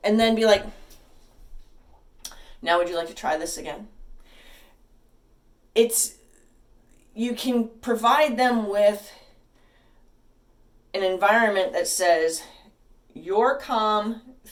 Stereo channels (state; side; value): identical; both; correlation 1.00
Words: then be like, now would you like to try this again? You can provide them with an environment that says, your calm